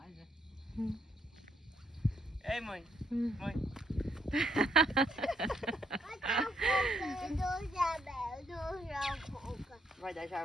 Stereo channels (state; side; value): normal; both; correlation 0.74